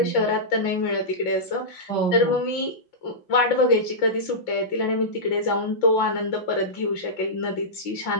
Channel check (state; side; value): late; right; 5.8 ms